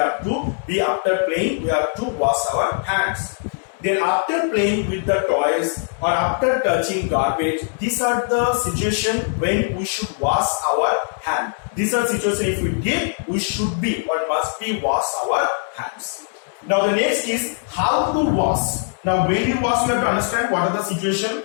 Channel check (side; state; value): right; silent; 59 dB below the other